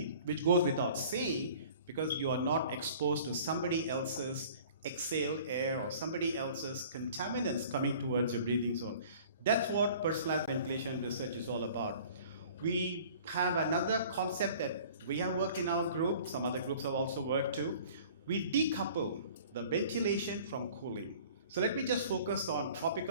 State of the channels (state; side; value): inverted; both; correlation -0.48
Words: which goes without saying, because you are not exposed to somebody else's exhaled air or somebody else's contaminants coming towards your breathing zone. That's what personalized ventilation research is all about. We have another concept that we have worked in our group, some other groups have also worked too. We decouple the ventilation from cooling. So let me just focus on